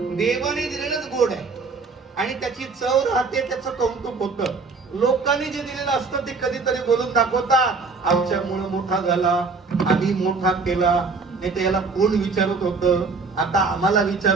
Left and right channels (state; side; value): quieter; left; 4.4 dB